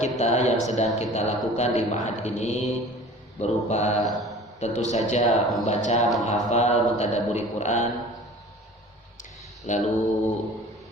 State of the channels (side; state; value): both; normal; correlation 0.44